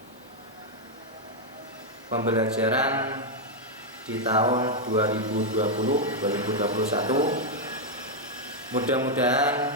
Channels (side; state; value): both; normal; correlation -0.01